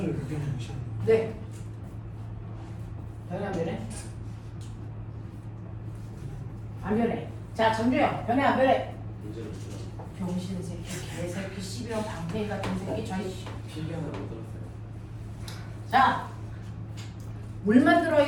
그렇게 보시는 네. 변해 안 변해? 안 변해. 자, 정주영 변해 안 변해? 문제를 풀어. 병신 새끼, 개새끼, 12원 방패이 같은 새끼, 저희. 필기하는 못 들었어요. 자, 물만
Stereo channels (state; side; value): identical; both; correlation 1.00